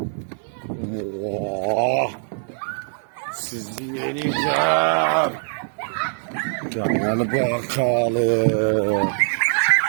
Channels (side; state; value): left; silent; 64 dB below the other